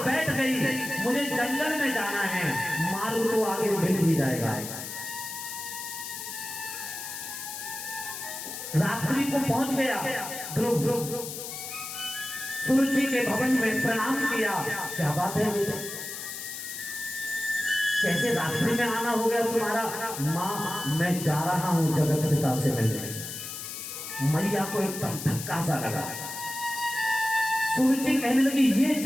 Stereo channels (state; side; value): noise; left; hiss, 8 dB below the sound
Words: बैठ गई, मुझे जंगल में जाना है, मार्ग तो आगे मिल ही जाएगा। रात्रि को पहुंच गया ध्रुव, सुरुचि के भवन में प्रणाम किया। क्या बात है बेटा, कैसे रात्रि में आना हो गया तुम्हारा? मां, मैं जा रहा हूं जगत पिता से मिलने। मैया को एकदम धक्का सा लगा। सुरुचि कहने लगी, ये